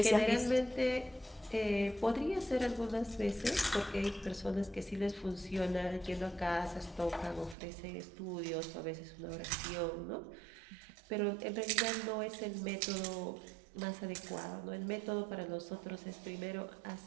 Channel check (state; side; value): drops out; left; at 7.6 s